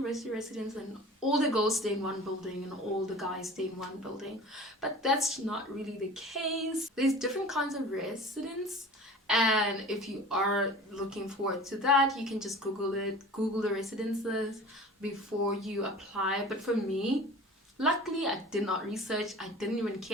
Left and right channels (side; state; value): both; normal; correlation 0.40